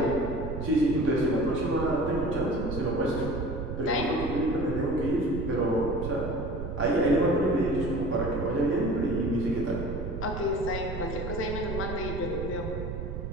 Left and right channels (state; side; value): noise; right; rumble, 5 dB below the sound